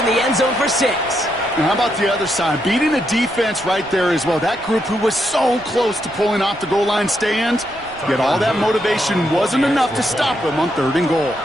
the end zone for 6. And how about the other side? Beating a defense right there as well. That group who was so close to pulling off the goal line stand, yet all that motivation wasn't enough to stop him on third and goal.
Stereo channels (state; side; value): noise; right; rumble, 23 dB below the sound